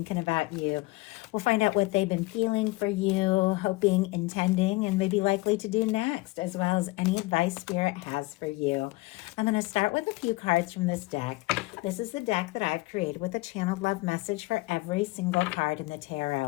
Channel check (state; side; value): quieter; right; 22.0 dB